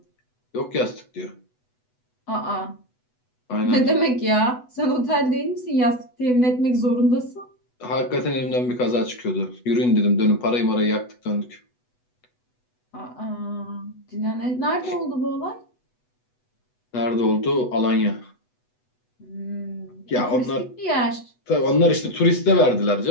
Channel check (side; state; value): right; late; 8.1 ms